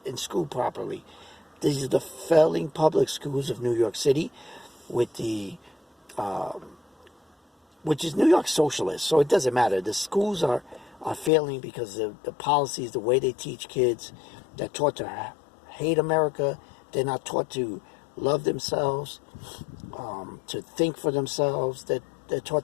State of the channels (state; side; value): drops out; right; at 11.3 s